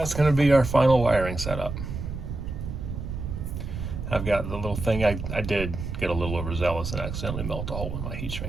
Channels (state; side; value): noise; right; rumble, 6 dB below the sound